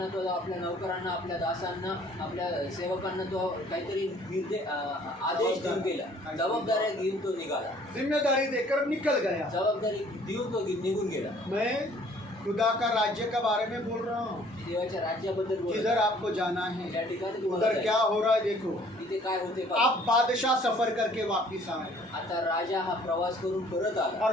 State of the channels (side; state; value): both; normal; correlation 0.57